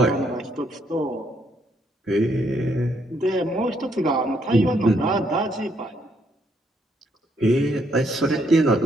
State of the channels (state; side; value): normal; both; correlation 0.72